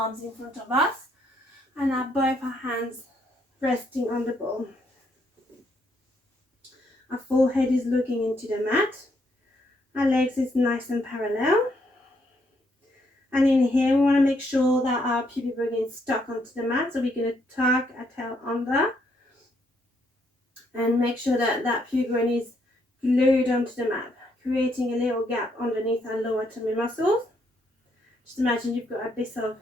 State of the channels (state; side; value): normal; both; correlation 0.73